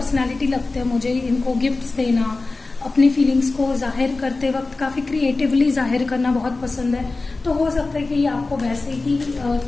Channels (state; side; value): quieter; right; 3.5 dB